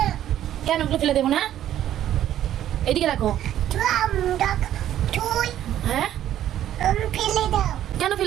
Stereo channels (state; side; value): quieter; left; 11.7 dB